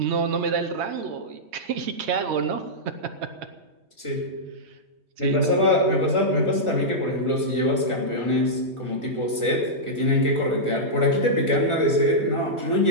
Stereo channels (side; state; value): left; late; 3.2 ms